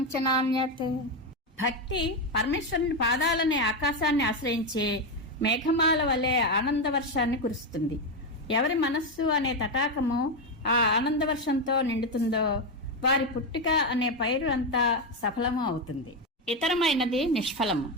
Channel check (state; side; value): normal; both; correlation 0.09